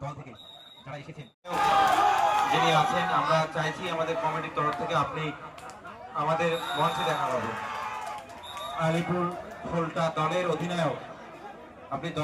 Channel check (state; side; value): identical; both; correlation 1.00